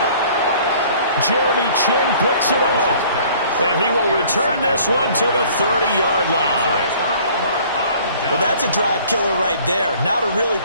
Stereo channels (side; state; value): both; inverted; correlation -0.53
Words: Jeremy Chin picks it off, and he will return this one to the 30-yard line. Well, that's a drive killer right there. Not a really